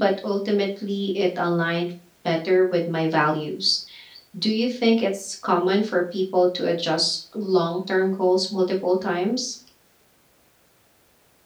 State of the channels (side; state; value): both; identical; correlation 1.00